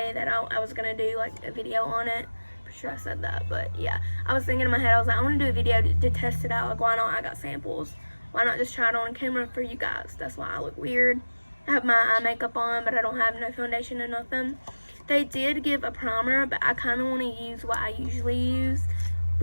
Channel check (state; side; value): inverted; both; correlation -1.00